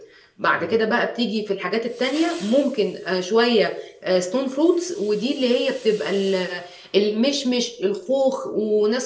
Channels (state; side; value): identical; both; correlation 1.00